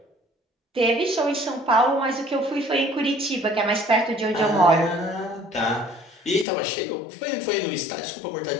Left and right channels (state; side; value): drops out; right; at 6.5 s